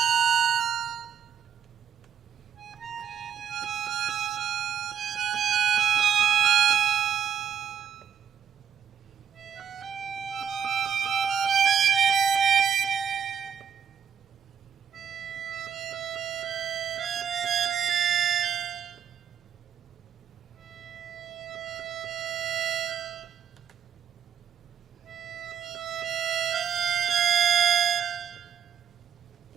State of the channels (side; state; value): left; quieter; 8.1 dB